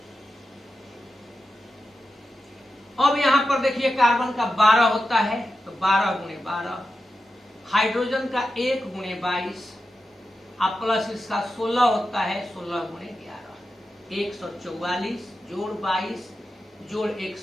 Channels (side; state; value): both; normal; correlation 0.91